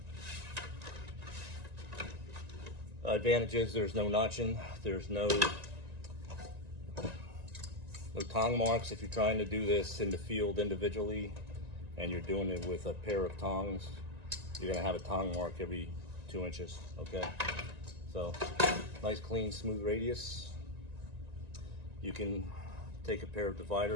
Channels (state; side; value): late; left; 1.9 ms